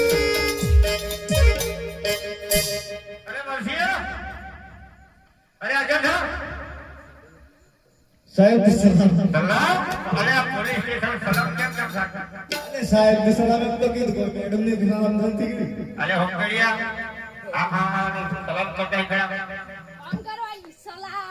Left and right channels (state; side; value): identical; both; correlation 1.00